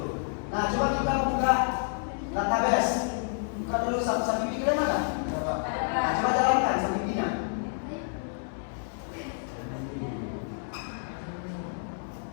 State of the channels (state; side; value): silent; right; digital silence